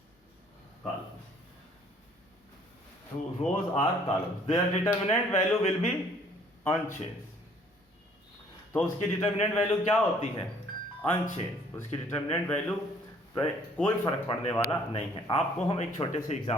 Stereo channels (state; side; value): normal; both; correlation 0.59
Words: columns, to rows or columns, their determinant value will be unchanged। तो उसकी determinant value क्या होती है, unchange. उसकी determinant value कोई फर्क पड़ने वाला नहीं है। आपको हम एक छोटे से